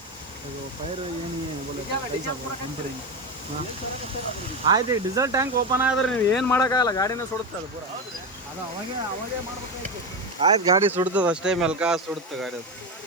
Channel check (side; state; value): both; normal; correlation 0.16